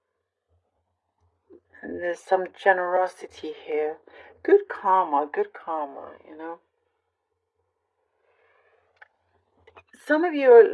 And there's some generosity here. Good karma. Some of you are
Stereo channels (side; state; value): both; identical; correlation 1.00